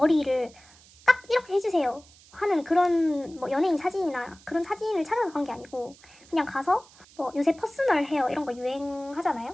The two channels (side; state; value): right; noise; hiss, 25 dB below the sound